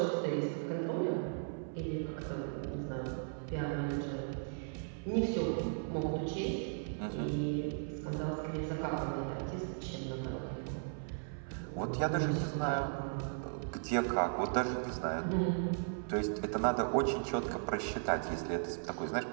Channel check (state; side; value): silent; left; 53 dB below the other